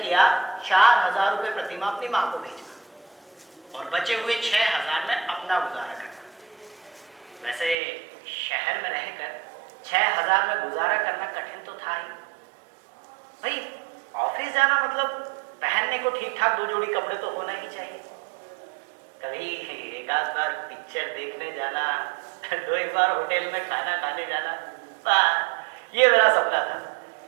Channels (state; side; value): drops out; left; at 7.8 s